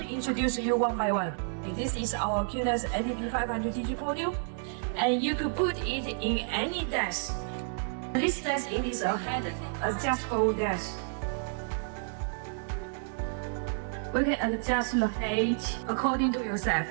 introduce you one by one. This is our Q-NEX NDP500 digital podium, and you could put it in any desk. This desk it is a head adjustable desk. We can adjust the height according to yourself.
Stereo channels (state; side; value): silent; left; digital silence